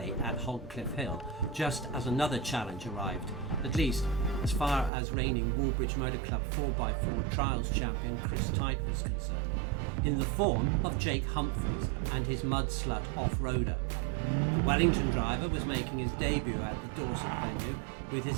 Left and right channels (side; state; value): left; drops out; at 4.9 s